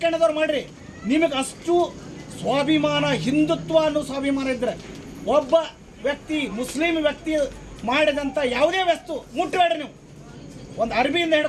ಮಾಡಿರಿ, ನಿಮಗೆ ಅಷ್ಟು ಸ್ವಾಭಿಮಾನ, ಹಿಂದುತ್ವ ಅನ್ನೋ ಸ್ವಾಭಿಮಾನ ಇದ್ದರೆ ಒಬ್ಬ ವ್ಯಕ್ತಿ, ಮುಸ್ಲಿಂ ವ್ಯಕ್ತಿ ಮಾಡಿದಂಥ ಯಾವುದೇ ವಸ್ತು ಮುಟ್ಟಬೇಡ್ರಿ ನೀವು. ಒಂದು ಅರ್ಬಿಯಿಂದ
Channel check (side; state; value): both; identical; correlation 1.00